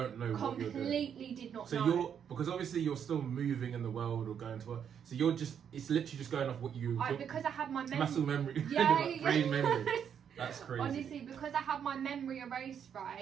know what you're doing. Completely did not know. So because obviously you're still moving in the world or going to work. So it's literally just going off what you. Because I had my muscle memory. Yeah, brain memory. That's crazy. Honestly, because I had my memory erased,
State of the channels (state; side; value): quieter; left; 8.2 dB